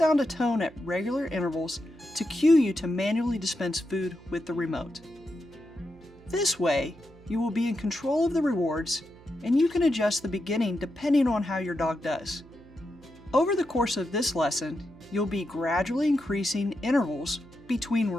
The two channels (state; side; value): noise; right; hum, 23 dB below the sound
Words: a tone at regular intervals to cue you to manually dispense food with the remote. This way, you will be in control of the rewards, and you can adjust the beginning depending on how your dog does. Over the course of this lesson, you'll be gradually increasing intervals between